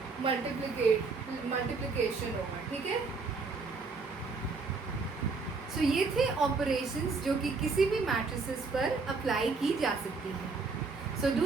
मल्टीप्लिकेशन होगा। ठीक है, सो ये थे ऑपरेशंस जो कि किसी भी मैट्रिसेस पर अप्लाई की जा सकती है। So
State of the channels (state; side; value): quieter; left; 4.3 dB